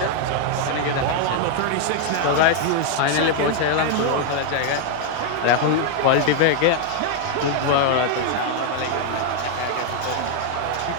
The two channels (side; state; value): both; different; correlation 0.00